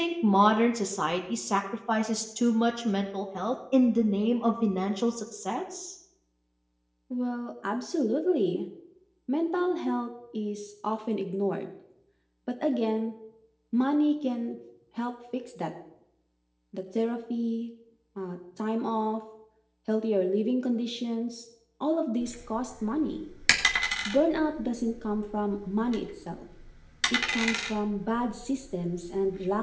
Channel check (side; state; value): both; identical; correlation 1.00